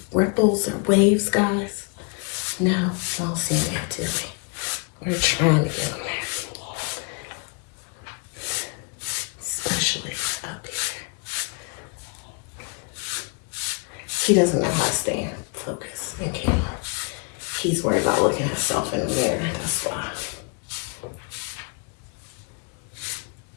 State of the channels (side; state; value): right; quieter; 35.9 dB